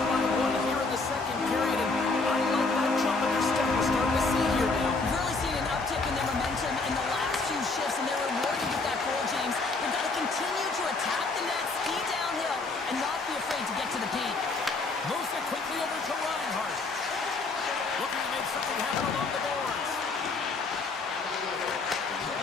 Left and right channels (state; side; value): quieter; right; 3.7 dB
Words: by one here in the second period, and I like that jump in their step we're starting to see here now. We've really seen an